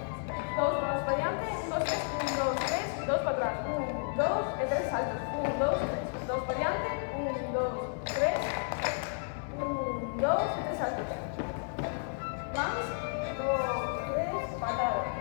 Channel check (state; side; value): silent; right; 56 dB below the other